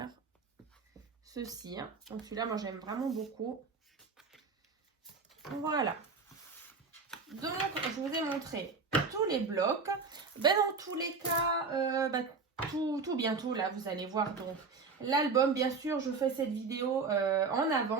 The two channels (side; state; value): left; quieter; 4.7 dB